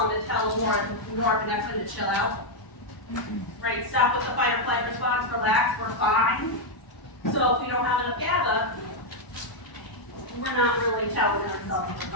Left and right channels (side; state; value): right; late; 1.0 ms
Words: that tells norepinephrine to chill out. Right, stop with the fight or flight response, relax, we're fine. So if we don't have enough GABA, we're not really telling ourselves we're